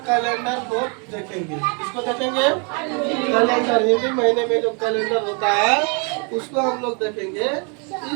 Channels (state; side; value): quieter; left; 36.4 dB